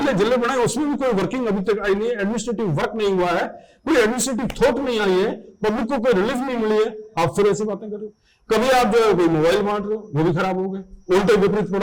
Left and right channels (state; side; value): identical; both; correlation 1.00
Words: जिले बनाए उसमें भी कोई वर्किंग अभी तक आई नहीं है, एडमिनिस्ट्रेटिव वर्क नहीं हुआ है, कोई एडमिनिस्ट्रेटिव थॉट नहीं आई है, पब्लिक को कोई रिलीफ नहीं मिली है, आप फिर ऐसी बातें कर रहे हो। कभी आप जो है कोई मोबाइल बांट रहे हो, वो भी खराब हो गए, उल्टे विपरीत